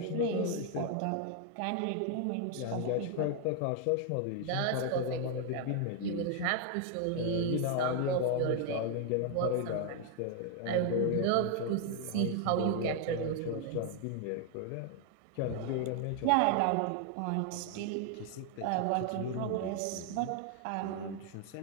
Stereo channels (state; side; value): different; both; correlation 0.00